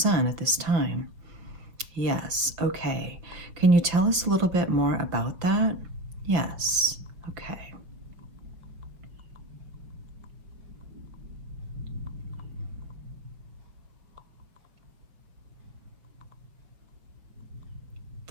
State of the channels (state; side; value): late; left; 5.6 ms